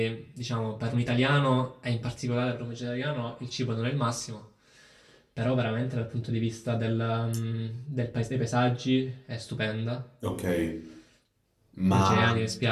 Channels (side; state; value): both; identical; correlation 1.00